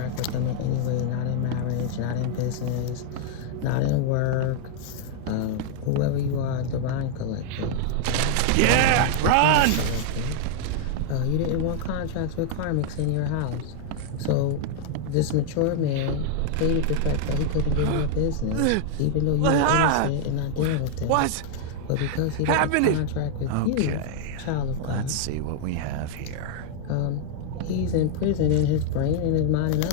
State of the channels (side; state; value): both; different; correlation 0.00